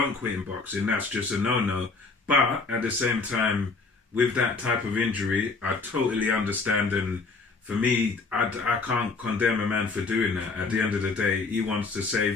quit in boxing, that's just a no-no. But at the same time, with that type of injury, I totally understand, and for me, I can't condemn a man for doing that. At the end of the day, he wants to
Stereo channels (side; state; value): right; quieter; 4.1 dB